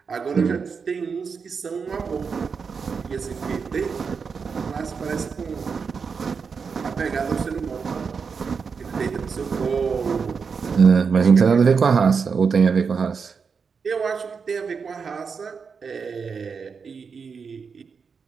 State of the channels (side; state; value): left; quieter; 5.6 dB